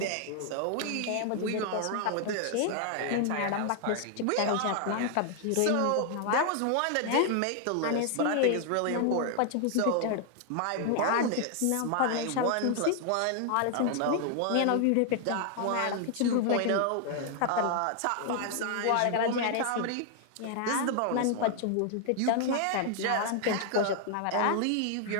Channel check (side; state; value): both; different; correlation 0.00